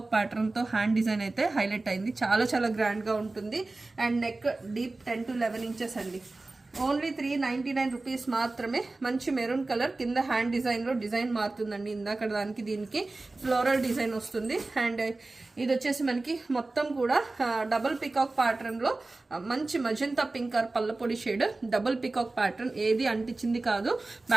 ప్యాటర్న్తో హ్యాండ్ డిజైన్ అయితే హైలైట్ అయింది. చాలా గ్రాండ్గా ఉంటుంది. And neck deep 10 to 11 inches అండి. ఓన్లీ 399 రూపీస్ మాత్రమే. మంచి మెరూన్ కలర్, కింద హ్యాండ్ డిజైన్లో డిజైన్ మారుతుందండి. ఇందాక దానికి దీనికి ఫ్లోరల్ డిజైన్ వస్తుంది. అండ్ ఇది వచ్చేసి మనకి మొత్తం కూడా డబుల్ పికాక్ ప్యాటర్న్లో మంచి మజంతా పింక్ ఆర్ పల్లపొడి షేడ్, డబుల్ పికాక్ ప్యాటర్న్, ఏది అంటించింది కాదు.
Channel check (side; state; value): left; quieter; 3.2 dB